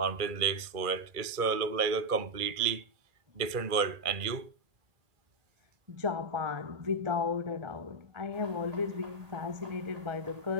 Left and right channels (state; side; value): late; left; 2.3 ms